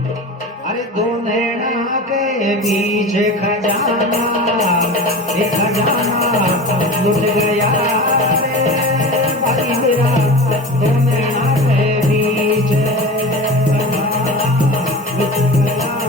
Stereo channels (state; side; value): normal; both; correlation 0.32